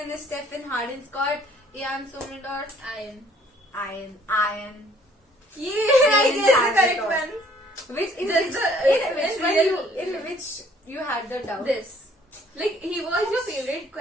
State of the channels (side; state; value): both; normal; correlation 0.60